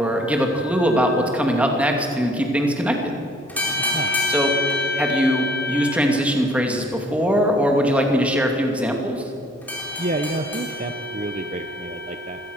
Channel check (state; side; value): normal; both; correlation 0.58